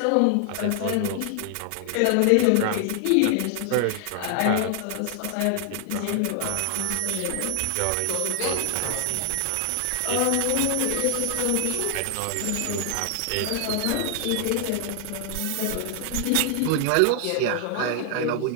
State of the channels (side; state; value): both; different; correlation 0.00